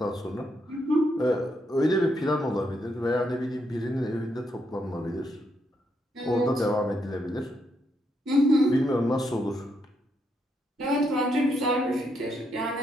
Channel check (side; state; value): both; normal; correlation 0.78